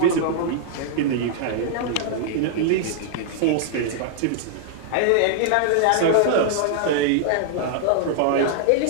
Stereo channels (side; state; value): both; different; correlation -0.01